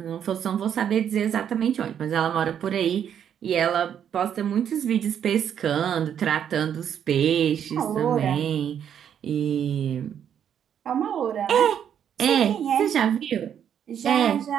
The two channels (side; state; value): left; quieter; 8.9 dB